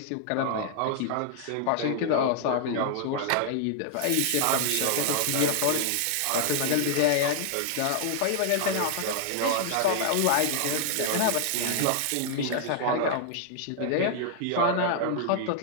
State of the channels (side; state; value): both; different; correlation -0.01